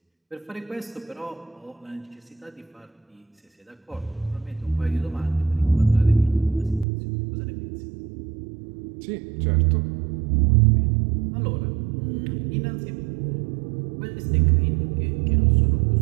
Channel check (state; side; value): drops out; left; at 6.9 s